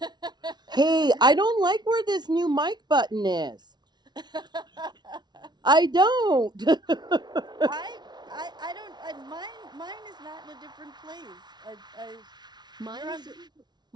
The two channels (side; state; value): left; late; 0.20 ms